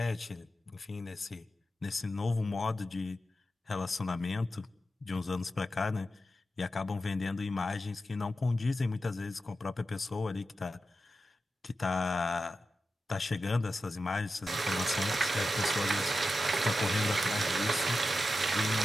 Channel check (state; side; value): normal; both; correlation 0.91